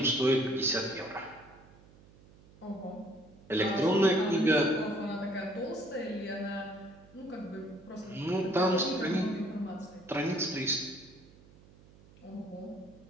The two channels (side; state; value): right; noise; hum, 24 dB below the sound